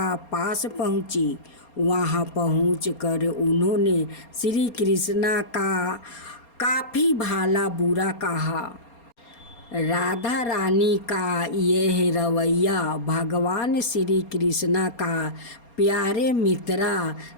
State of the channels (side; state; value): right; late; 4.3 ms